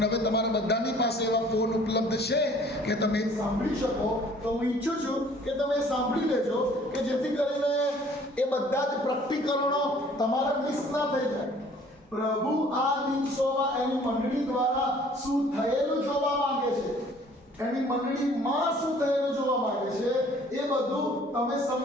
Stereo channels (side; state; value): both; normal; correlation 0.55